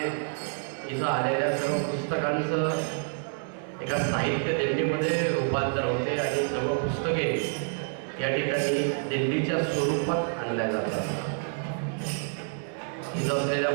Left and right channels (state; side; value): silent; left; 59 dB below the other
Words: इथं आलेल्या सर्व पुस्तकांचं एका साहित्य दिंडीमध्ये रूपांतर होते आणि सर्व पुस्तके या ठिकाणी दिंडीच्या स्वरूपात आणल्या जातात. इथं असलेल्या